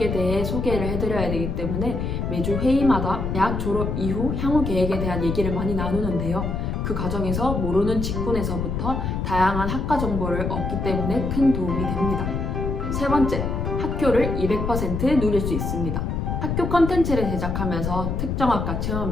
대해 소개를 해드려야 되기 때문에 매주 회의마다 대학 졸업 이후 향후 계획에 대한 얘기를 많이 나누는데요. 그 과정에서 모르는 직군에서부터 다양한 학과 정보를 얻기 때문에 큰 도움이 됩니다. 세 번째, 학교를 200% 누릴 수 있습니다. 학교 컨텐츠를 제작하면서 특정 학과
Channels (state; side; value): noise; left; rumble, 2 dB below the sound